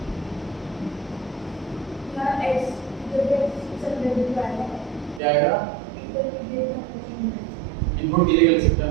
क्या आएगा, इनपुट की जगह लिख सकते हैं,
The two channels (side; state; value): left; drops out; at 5.2 s